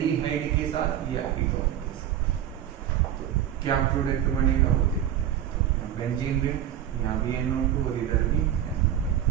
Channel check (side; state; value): left; quieter; 10.7 dB